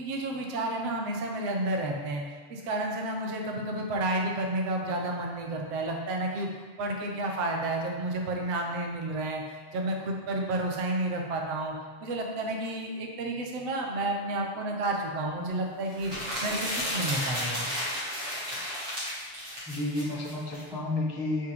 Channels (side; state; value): left; late; 7.1 ms